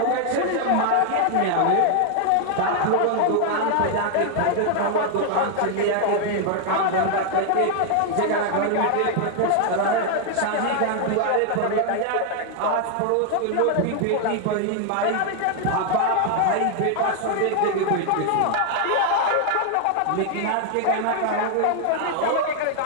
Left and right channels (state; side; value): different; both; correlation 0.00